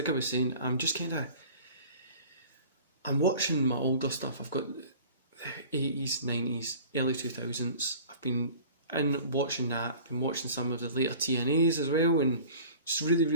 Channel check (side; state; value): both; inverted; correlation -0.44